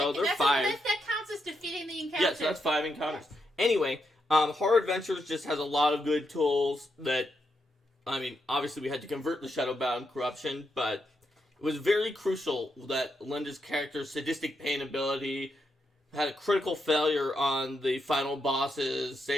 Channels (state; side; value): normal; both; correlation 0.82